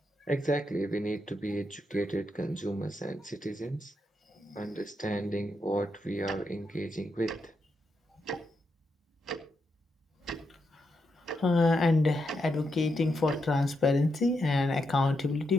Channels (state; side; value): normal; both; correlation 0.83